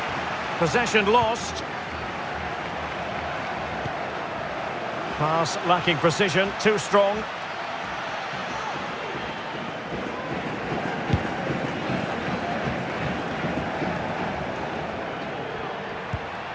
Possession lost. Pass lacking precision, too strong.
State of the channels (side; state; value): both; identical; correlation 1.00